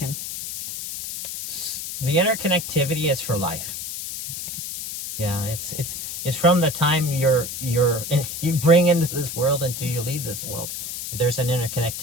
The interconnectivity is for life. Okay. Yeah, it's from the time you bring into this world until you leave this world. There's an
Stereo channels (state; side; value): noise; left; hiss, 6 dB below the sound